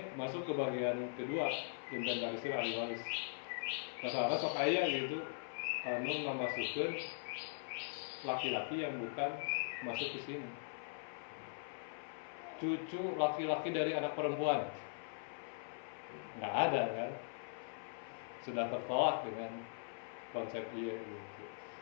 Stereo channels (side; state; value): right; silent; 50 dB below the other